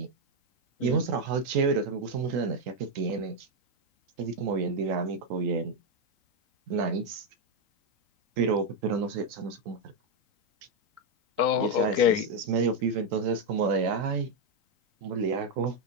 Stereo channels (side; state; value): left; late; 3.8 ms